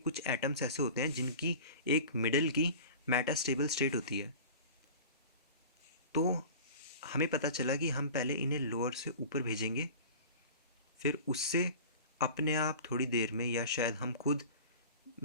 एटम्स ऐसे होते हैं जिनकी एक मिडल की मेटास्टेबल स्टेट होती है। तो हमें पता चला कि हम पहले इन्हें लोअर से ऊपर भेजेंगे, फिर उससे अपने आप थोड़ी देर में, या शायद हम खुद,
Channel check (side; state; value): both; inverted; correlation -0.38